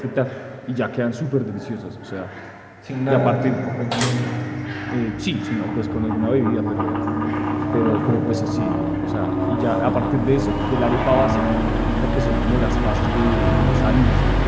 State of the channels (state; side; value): identical; both; correlation 1.00